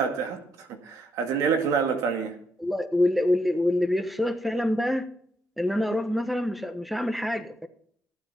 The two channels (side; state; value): both; normal; correlation 0.78